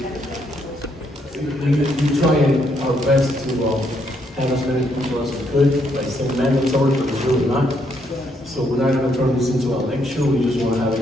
We try our best to have as many people as we could, like saying mandatory, but it's really not. So we're not gonna turn this into a lecture, we just wanna have a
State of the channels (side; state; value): both; normal; correlation 0.74